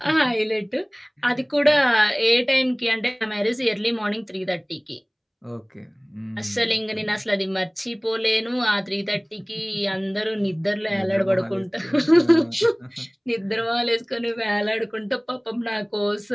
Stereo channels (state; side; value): identical; both; correlation 1.00